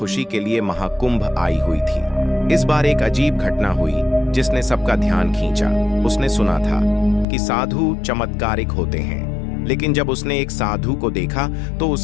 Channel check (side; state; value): right; drops out; at 7.2 s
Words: के लिए महाकुंभ आई हुई थी। इस बार एक अजीब घटना हुई जिसने सबका ध्यान खींचा। उसने सुना था कि साधु चमत्कारिक होते हैं, लेकिन जब उसने एक साधु को देखा तो